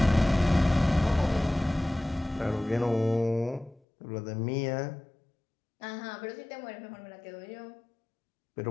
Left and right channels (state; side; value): drops out; right; at 3.8 s